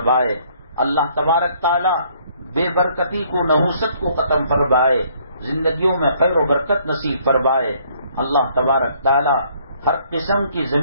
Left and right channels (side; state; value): both; inverted; correlation -0.64